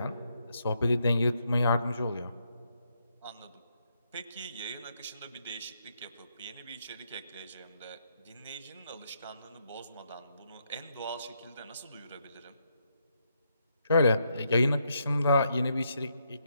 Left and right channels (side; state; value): both; inverted; correlation -0.78